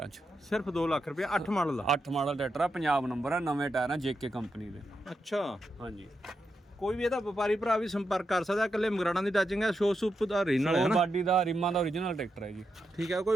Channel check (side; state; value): both; normal; correlation 0.85